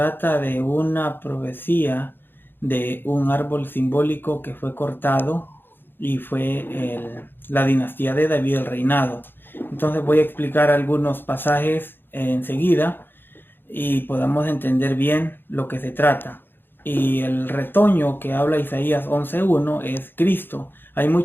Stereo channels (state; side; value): late; right; 0.10 ms